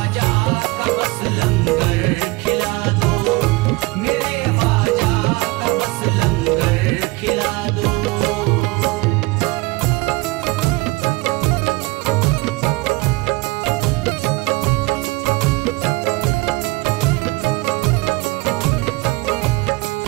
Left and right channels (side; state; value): left; quieter; 23.4 dB